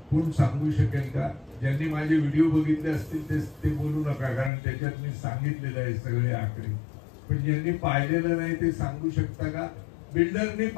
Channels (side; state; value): right; drops out; at 4.5 s